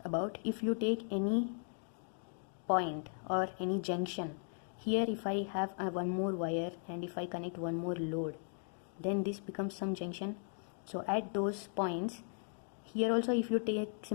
about if you take any point or any junction. Here if I have one more wire and if I connect one more load, then this becomes some junction. So at those points, here also if you take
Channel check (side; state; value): right; silent; 53 dB below the other